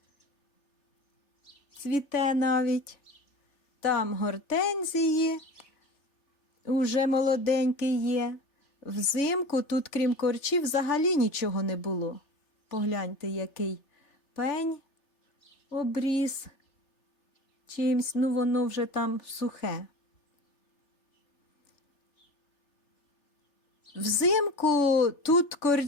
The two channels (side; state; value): right; late; 3.3 ms